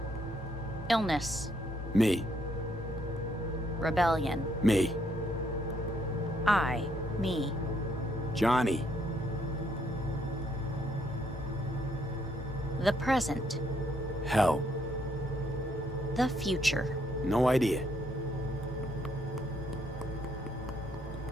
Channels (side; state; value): both; normal; correlation 0.71